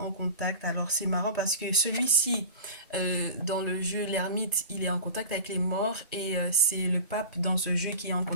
contact. Alors, c'est marrant parce que celui-ci, dans le jeu, l'ermite, il est en contact avec les morts et c'est le pape dans ce jeu qui est en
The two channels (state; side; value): inverted; both; correlation -0.35